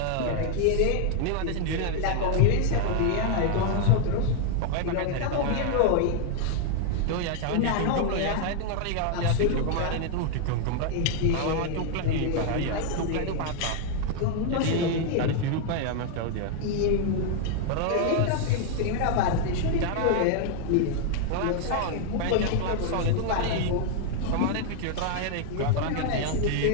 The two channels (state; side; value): different; both; correlation 0.00